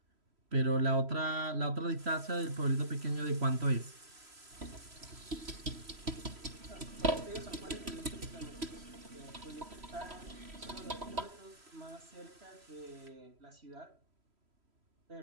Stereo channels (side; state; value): left; late; 3.0 ms